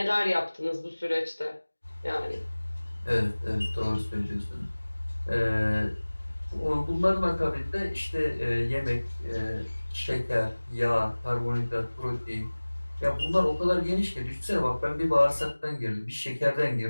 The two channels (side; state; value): both; inverted; correlation -1.00